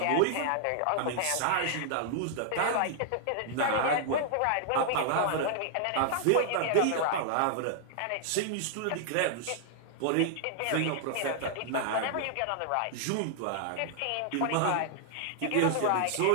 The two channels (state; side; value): different; both; correlation -0.01